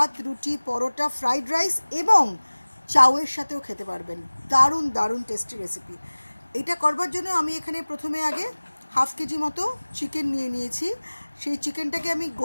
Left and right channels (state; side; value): inverted; both; correlation -1.00